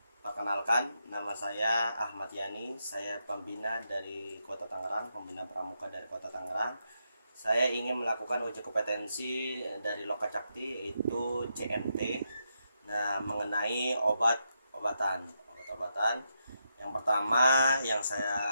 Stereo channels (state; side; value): inverted; both; correlation -0.83